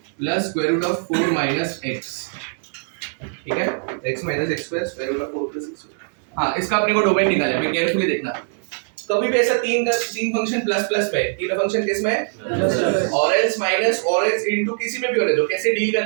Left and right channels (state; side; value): silent; left; 59 dB below the other